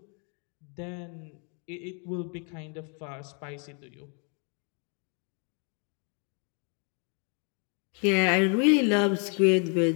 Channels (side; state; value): right; quieter; 37.9 dB